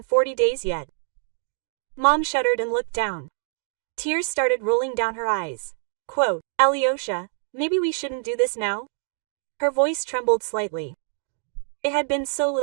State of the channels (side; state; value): left; silent; digital silence